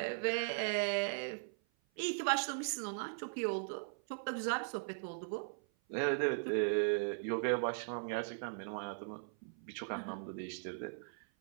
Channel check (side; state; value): left; silent; 52 dB below the other